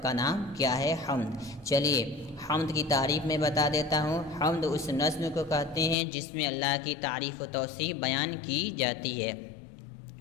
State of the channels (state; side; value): drops out; right; at 6.0 s